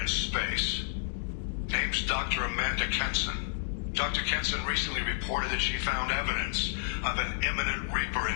space. Name's Dr. Amanda Kenson. Dr. Kenson recently reported that she found evidence of an imminent Reaper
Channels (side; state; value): right; silent; digital silence